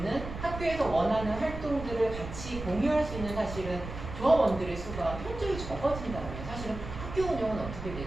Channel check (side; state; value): right; noise; rumble, 9 dB below the sound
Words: 학교에서 원하는 활동들을 같이 공유할 수 있는 사실은 조합원들의 수가 현저히 적어진다면 사실은 학교 운영은 어떻게